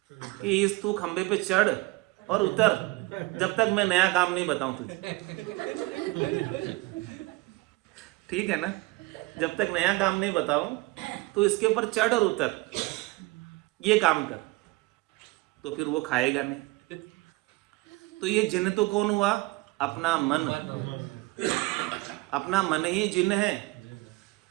कि इस तू खंबे पे चढ़ और उतर, जब तक मैं नया काम नहीं बताऊं तुझे। ठीक है ना? जब तक नया काम नहीं बताऊं तो इसके ऊपर चढ़ और उतर, ये काम कर, तो फिर वो खाएगा नहीं। तो ये जिन्न तो कौन हुआ? अपना मन। अपना मन ही जिन्न है।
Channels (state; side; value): quieter; left; 22.1 dB